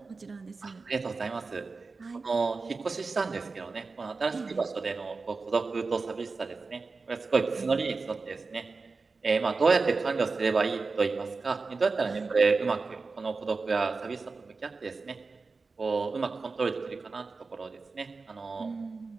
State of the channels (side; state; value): left; quieter; 4.1 dB